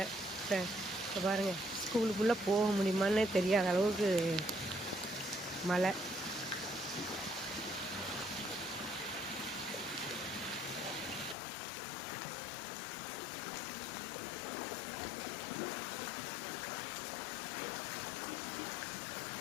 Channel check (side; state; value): right; drops out; at 11.4 s